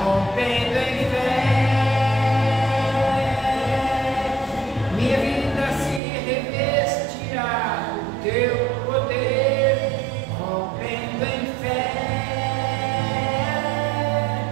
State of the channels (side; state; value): left; drops out; at 6.0 s